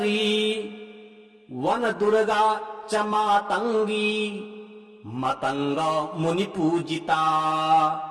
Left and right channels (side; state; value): both; identical; correlation 1.00